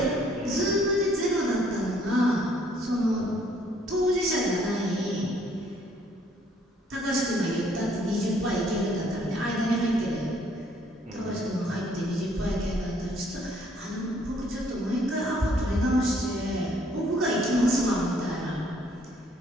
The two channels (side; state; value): both; normal; correlation 0.64